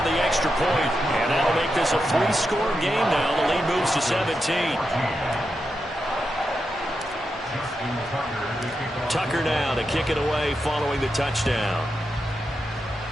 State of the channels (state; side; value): normal; both; correlation 0.87